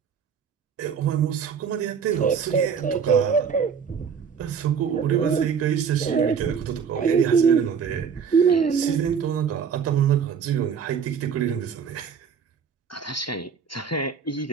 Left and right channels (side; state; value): left; quieter; 6.8 dB